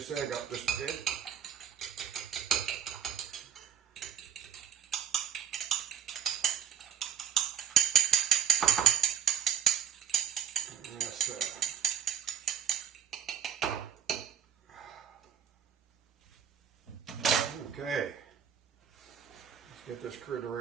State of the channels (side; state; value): left; quieter; 8.4 dB